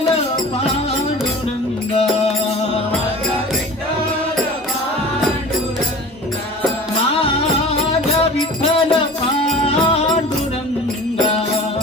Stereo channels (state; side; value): normal; both; correlation 0.40